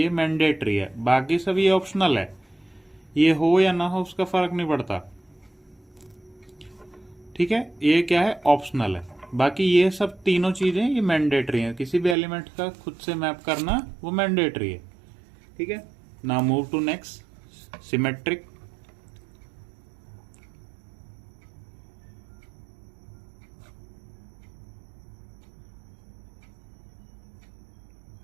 मैंडेटरी है, बाकी सब ये ऑप्शनल है। ये हो या ना हो उसका फर्क नहीं पड़ता। ठीक है, ये क्या है? ऑप्शनल है। बाकी ये सब तीनों चीजें ये मैंडेटरी हैं। किसी भी एलिमेंट का खुद से मैप करना वो मैंडेटरी है। ठीक है, now move to next, symmetric.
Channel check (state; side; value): drops out; left; at 12.2 s